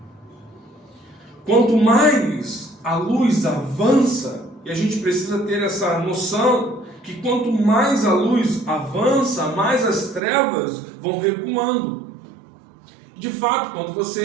Quanto mais a luz avança, e a gente precisa ter essa noção, que quanto mais a luz avança, mais as trevas vão recuando. De fato, quando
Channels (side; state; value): left; drops out; at 10.2 s